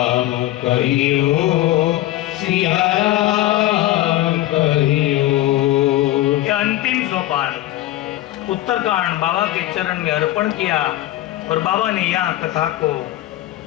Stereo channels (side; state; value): right; quieter; 15.4 dB